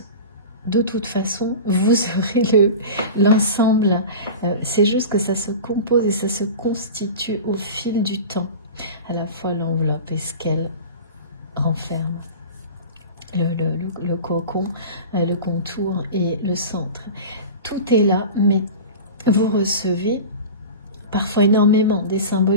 De toute façon, vous aurez l'ensemble. C'est juste que ça se compose et ça se constitue au fil du temps. À la fois l'enveloppe et ce qu'elle renferme. Le cocon, le contour et le centre. Tout est là, mais vous recevez parfois énormément des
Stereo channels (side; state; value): both; inverted; correlation -0.32